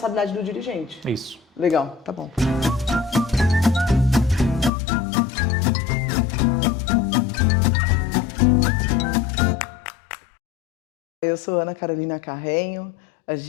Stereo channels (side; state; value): right; drops out; at 4.7 s